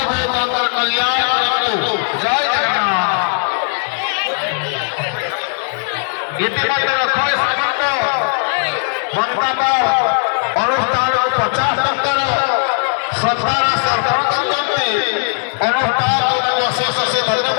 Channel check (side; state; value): right; silent; 57 dB below the other